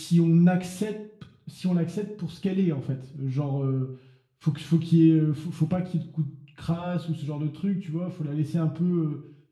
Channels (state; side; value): identical; both; correlation 1.00